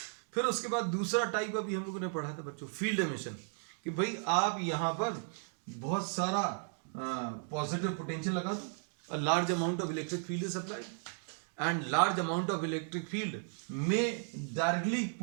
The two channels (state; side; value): silent; left; 54 dB below the other